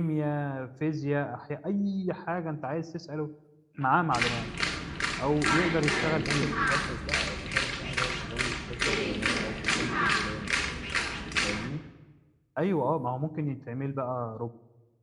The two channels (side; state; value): both; identical; correlation 1.00